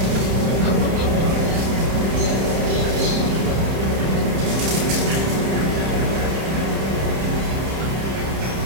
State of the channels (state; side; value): late; left; 31 ms